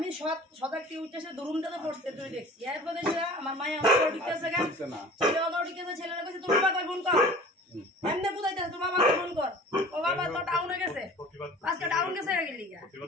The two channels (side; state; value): both; normal; correlation 0.43